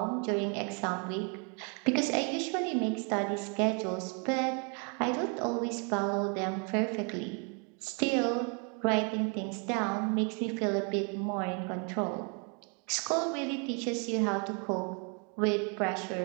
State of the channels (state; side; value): quieter; left; 36.1 dB